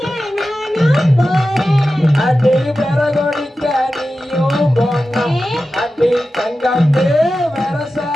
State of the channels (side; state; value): both; normal; correlation 0.93